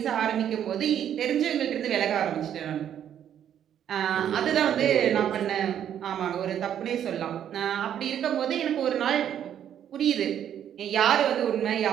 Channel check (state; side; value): quieter; left; 9.8 dB